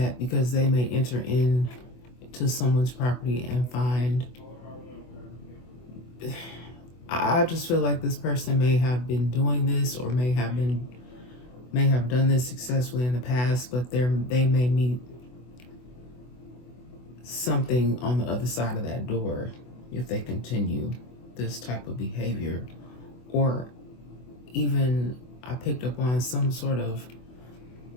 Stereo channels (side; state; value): right; late; 24 ms